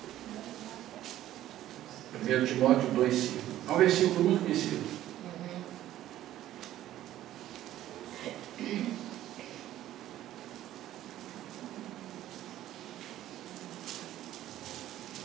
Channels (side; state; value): left; quieter; 13.3 dB